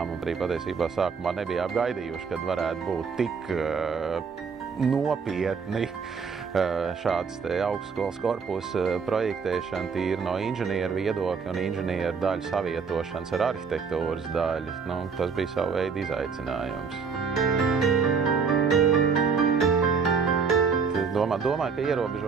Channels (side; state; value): left; quieter; 5.6 dB